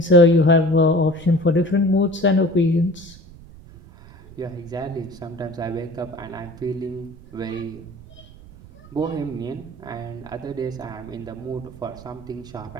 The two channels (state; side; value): noise; right; rumble, 20 dB below the sound